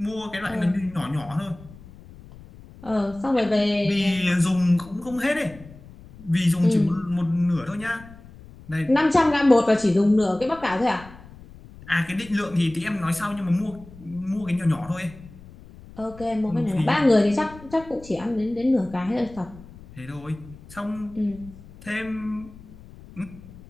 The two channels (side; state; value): left; noise; rumble, 19 dB below the sound